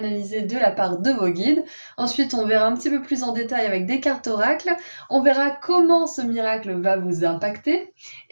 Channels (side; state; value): both; inverted; correlation -1.00